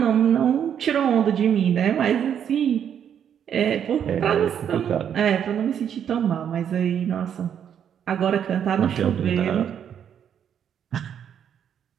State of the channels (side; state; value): left; quieter; 8.8 dB